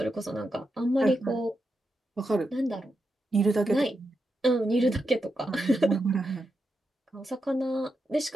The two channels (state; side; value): normal; both; correlation 0.86